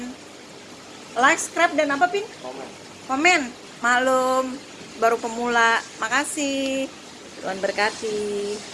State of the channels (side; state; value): both; identical; correlation 1.00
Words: dan apa Pin? Komen. Maklum baru pemula. Makasih. Tuhan berkati.